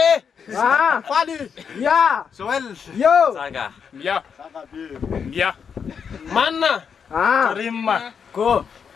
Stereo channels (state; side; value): quieter; right; 6.7 dB